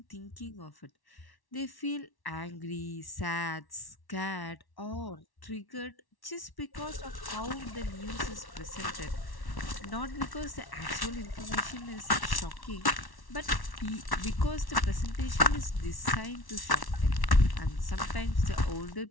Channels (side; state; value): right; late; 1.1 ms